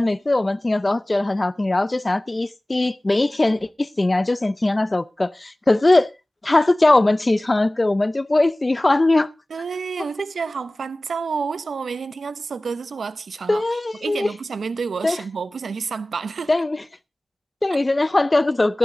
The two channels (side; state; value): both; normal; correlation 0.98